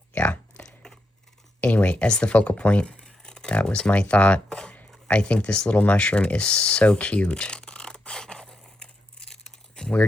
Yeah. Anyway, as the focal point, that was my thought. I think this little mushroom is so cute.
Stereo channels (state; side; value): normal; both; correlation 0.83